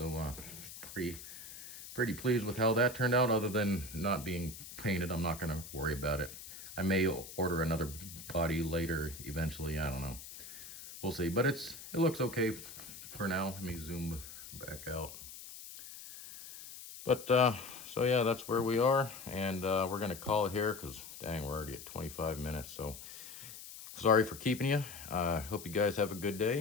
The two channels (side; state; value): left; noise; hiss, 13 dB below the sound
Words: pretty pleased with how that turned out. Other than not being painted, I'm not going to worry about it. I may order another body later eventually, I don't know. We'll see, but it looks okay for now. Let me zoom back out. But so yeah, that's where we are, and we're gonna call it here because dang, we're already at 25 minutes. So sorry for keeping you. Hope you guys have a good